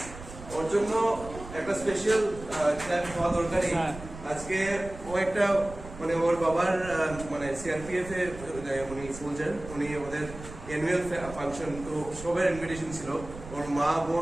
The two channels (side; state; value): right; noise; rumble, 14 dB below the sound